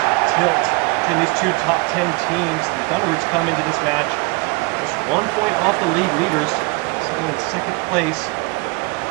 tilt between these two top 10 teams. The Thunderbirds come into this match just 1 point off the league leaders, sitting in second place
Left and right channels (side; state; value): left; quieter; 29.0 dB